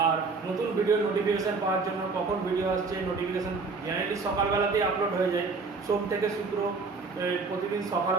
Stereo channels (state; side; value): quieter; left; 4.3 dB